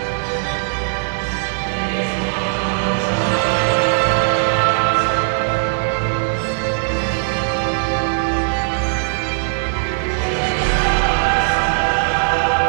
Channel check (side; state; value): left; silent; 59 dB below the other